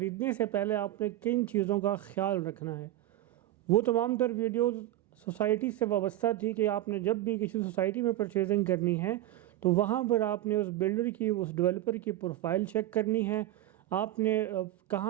سے پہلے آپ نے کن چیزوں کا خیال رکھنا ہے۔ وہ تمام تر ویڈیوز سوسائٹی سے وابستہ تھی کہ آپ نے جب بھی کسی سوسائٹی میں پرچیزنگ کرنی ہے تو وہاں پر آپ نے اس بلڈر کی اس ڈیولپر کی پروفائل چیک کرنی ہے، آپ نے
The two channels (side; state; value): left; quieter; 14.3 dB